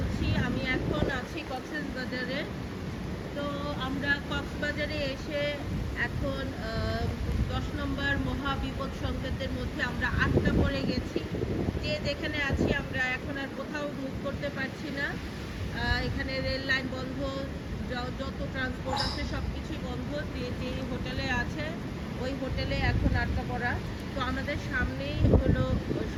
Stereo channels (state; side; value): identical; both; correlation 1.00